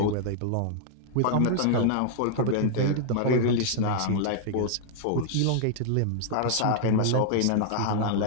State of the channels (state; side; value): different; both; correlation -0.01